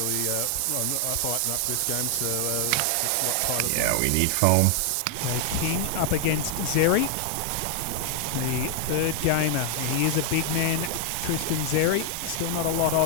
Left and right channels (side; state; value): both; different; correlation 0.00